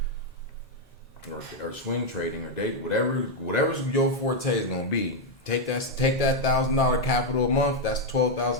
or swing trading or date, whatever's your forte is gonna be. Take that $1,000 capital a month. That's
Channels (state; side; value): normal; both; correlation 0.01